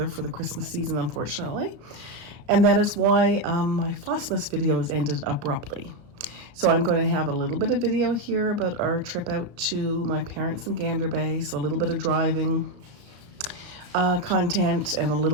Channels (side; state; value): left; late; 34 ms